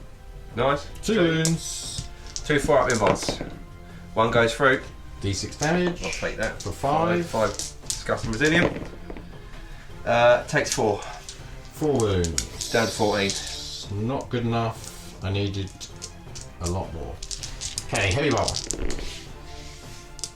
Nice. 2 wounds. 2 4-up invites. 1 goes through. D6 damage. I'll take that. For 5. 5 disgusting resilient. Takes 4. 4 wounds. Down to 14. Not good enough. I needed a lot more. Okay, heavy bar.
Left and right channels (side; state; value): both; identical; correlation 1.00